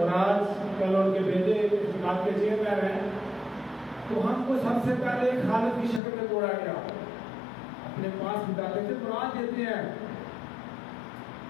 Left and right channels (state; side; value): drops out; right; at 6.0 s